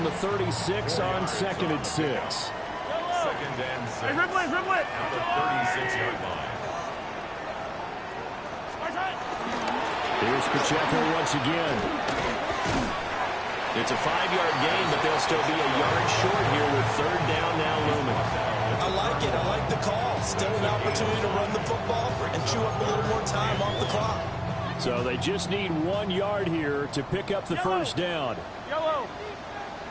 the 36 on 2nd and 6. 2nd and 6. Hey, dribble it. At the 36-yard line. Here's Pacheco once again. It's a 5-yard gain, but they'll still be a yard short here with 3rd down now looming. I like it. I like the call. Still an opportunity to run the football and chew up a little more time off the clock. So they just need 1 yard here to pick up the first down. Yellow.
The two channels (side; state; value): both; identical; correlation 1.00